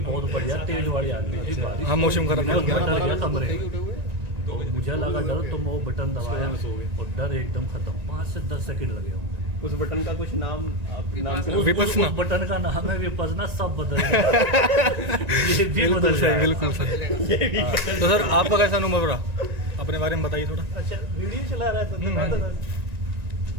बहुत बढ़िया तेज वाली आंधी थी बारिश। हाँ, मौसम खराब है। डर गया कमरे, तो मुझे लगा डर, तो मैं वो बटन दबाया और डर एकदम खत्म। 5 से 10 सेकंड लगे होंगे। उस बटन का कुछ नाम विपसना। उस बटन का नाम है विपसना। सब बदल गया। ये भी बदल गया। बिल्कुल सही। तो सर आपका कैसा अनुभव रहा, अपने बारे में बताइए थोड़ा। अच्छा, वीडियो चला रहा था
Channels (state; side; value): late; left; 1.9 ms